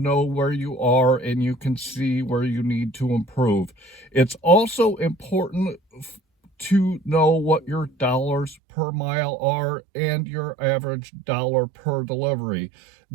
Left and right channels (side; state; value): left; drops out; at 8.6 s